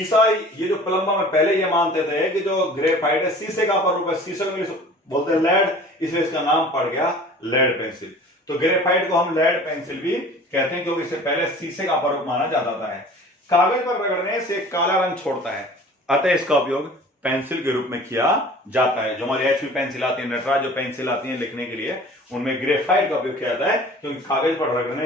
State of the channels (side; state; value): both; normal; correlation 0.45